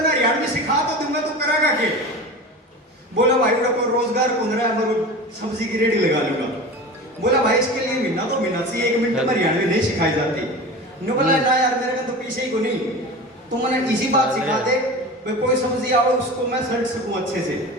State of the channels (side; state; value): both; normal; correlation 0.32